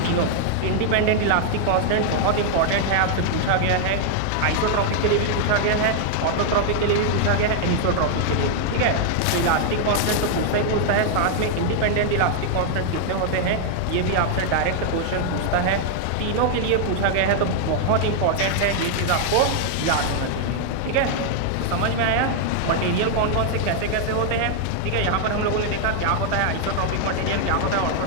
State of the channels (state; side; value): different; both; correlation 0.00